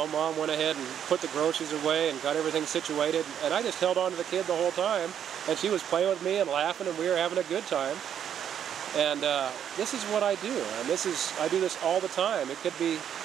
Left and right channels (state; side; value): quieter; left; 9.2 dB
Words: Mom went ahead and put the groceries away and got everything situated, and I just held on to the kid the whole time, and she was playing with me and laughing, and we were having a good time. And this is what I do, and I do this all the time. It could be